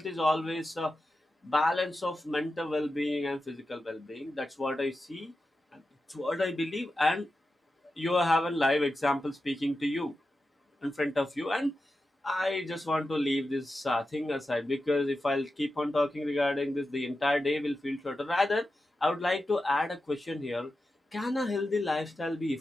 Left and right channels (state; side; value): normal; both; correlation 0.91